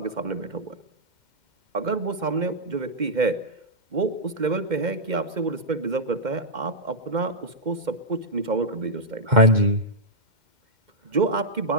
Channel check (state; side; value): late; left; 2.1 ms